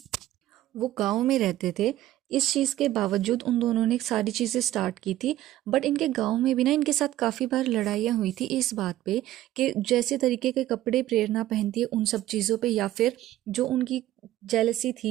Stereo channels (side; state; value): left; quieter; 14.2 dB